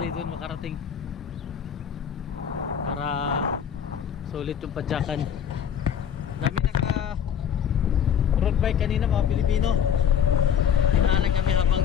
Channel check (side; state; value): right; quieter; 8.5 dB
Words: doon makarating para sulit yung padyakan. Dami naka road bike kanina, mga Pilipino. Dinaanan kami habang